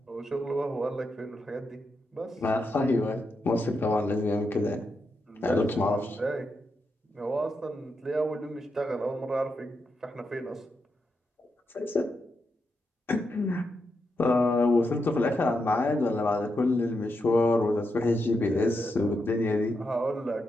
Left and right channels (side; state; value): both; normal; correlation 0.84